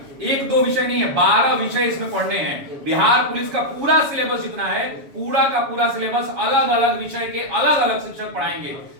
एक दो विषय नहीं है, 12 विषय इसमें पढ़ने हैं। बिहार पुलिस का पूरा सिलेबस जितना है, पूरा का पूरा सिलेबस, अलग अलग विषय के अलग अलग शिक्षक पढ़ाएंगे।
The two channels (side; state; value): left; late; 7.2 ms